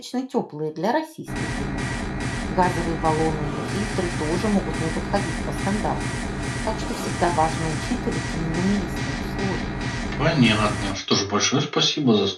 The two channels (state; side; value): identical; both; correlation 1.00